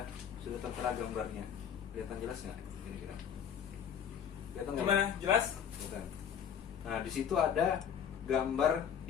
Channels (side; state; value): right; quieter; 8.4 dB